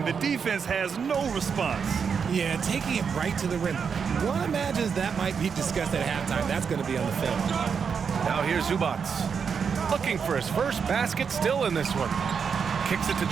the defense has no response. Yeah, taking it right to the rim. One imagines that might be discussed at halftime. That's going to be on the film. Now here's Zubac. Looking for his first basket, still in this one. Kicks it to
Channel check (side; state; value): left; quieter; 6.4 dB